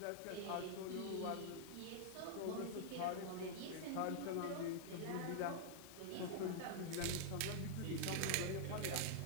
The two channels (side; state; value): both; different; correlation -0.01